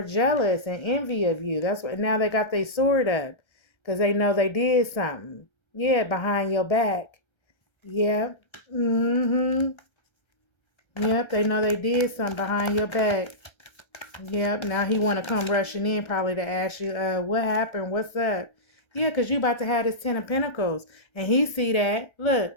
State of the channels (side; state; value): right; late; 1.3 ms